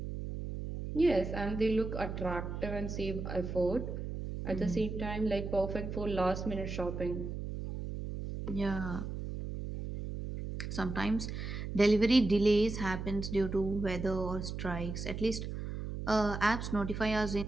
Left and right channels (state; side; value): noise; right; hum, 6 dB below the sound